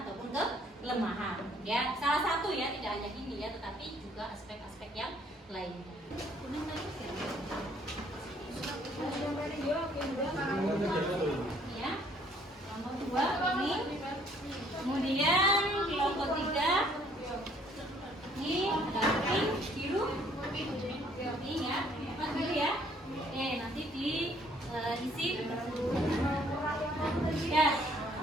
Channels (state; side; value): normal; both; correlation 0.62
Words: kelemahan. Ya, salah satu ya, tidak hanya ini ya, tetapi juga aspek-aspek yang lainnya. Ya. Kelompok 2 ini. Kemudian kelompok 3 ini ada pink, biru, ini ya, apa dulu ya? Nanti diisi